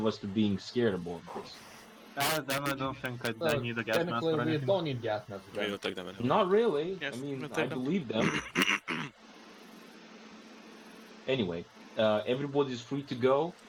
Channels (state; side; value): identical; both; correlation 1.00